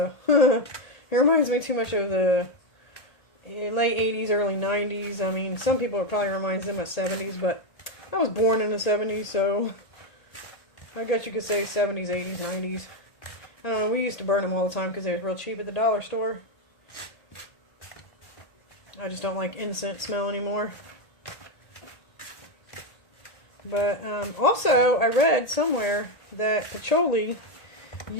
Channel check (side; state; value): right; late; 1.8 ms